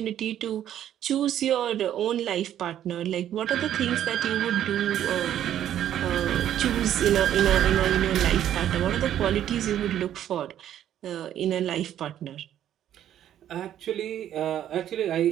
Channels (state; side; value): quieter; left; 11.0 dB